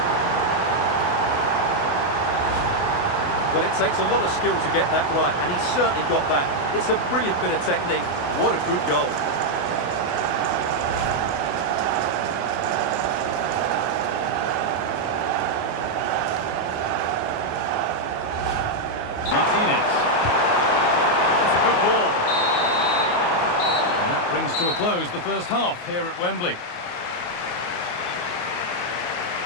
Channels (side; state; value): right; late; 28 ms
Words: Well, it takes a lot of skill to get that right, and he's certainly got that. It's a brilliant bit of technique. What a good goal. Martinez. That's a good ball. And that brings to a close the first half here at Wembley.